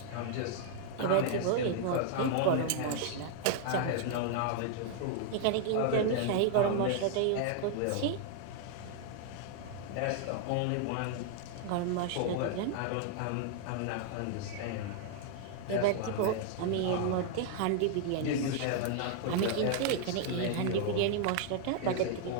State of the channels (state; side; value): different; both; correlation 0.00